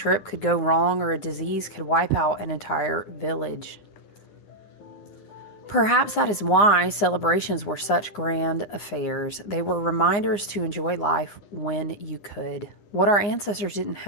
could go wrong or a disease could wipe out an entire village. Perhaps that is why celebrations were such grand affairs. They were reminders to enjoy life when you could. What our ancestors didn't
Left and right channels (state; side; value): late; right; 9.8 ms